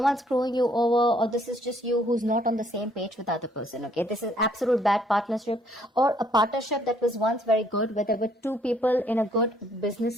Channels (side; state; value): both; normal; correlation 0.65